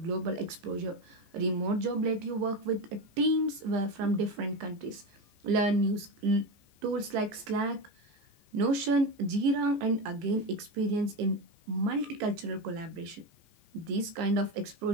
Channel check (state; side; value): late; left; 15 ms